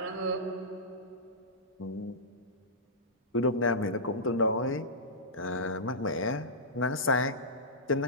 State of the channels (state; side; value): normal; both; correlation -0.16